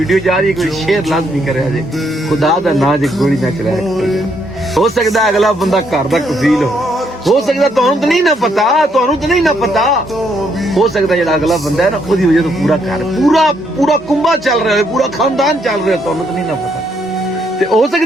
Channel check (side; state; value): both; normal; correlation 0.73